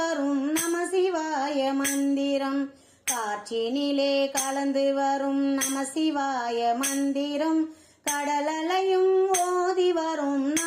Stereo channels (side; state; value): both; identical; correlation 1.00